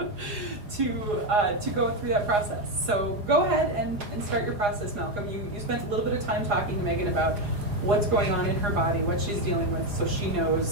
to go through that process. So go ahead and start your process, Malcolm. You spent a little bit of time talking to Megan about what's going on in her body, what she's dealing with, so she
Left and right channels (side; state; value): left; late; 4.8 ms